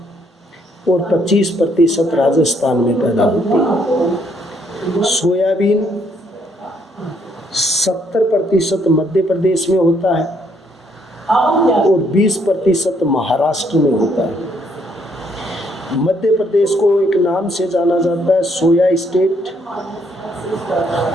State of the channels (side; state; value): both; normal; correlation 0.70